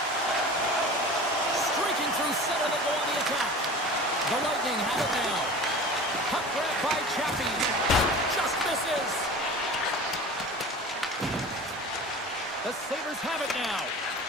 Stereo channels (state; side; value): normal; both; correlation 0.37